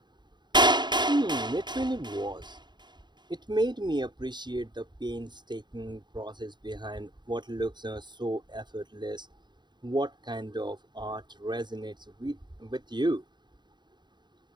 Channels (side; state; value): left; late; 0.21 ms